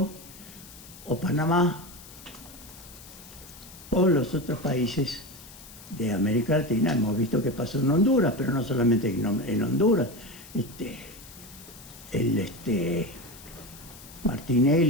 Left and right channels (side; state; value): left; noise; hiss, 18 dB below the sound